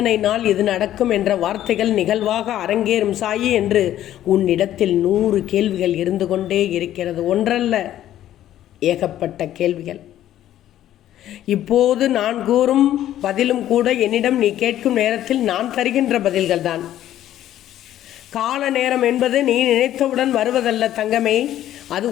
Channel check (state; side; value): quieter; right; 12.4 dB